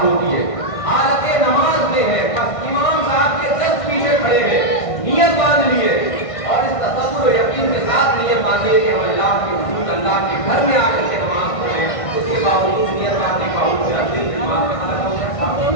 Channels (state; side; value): late; right; 1.6 ms